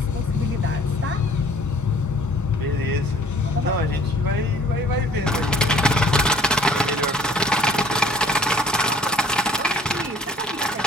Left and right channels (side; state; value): both; normal; correlation 0.54